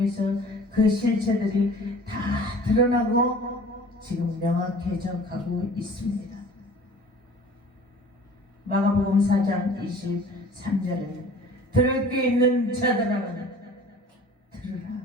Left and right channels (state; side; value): normal; both; correlation 0.46